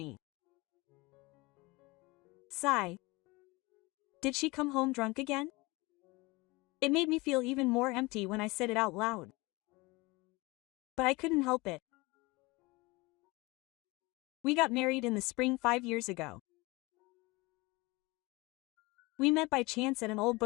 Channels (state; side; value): quieter; right; 23.4 dB